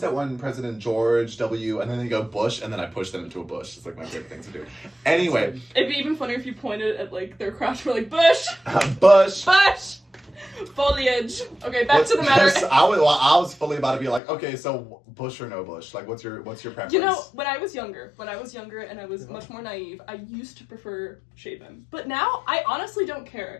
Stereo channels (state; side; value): drops out; right; at 14.2 s